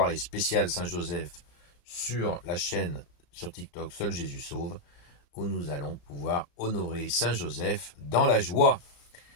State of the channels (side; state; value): right; late; 35 ms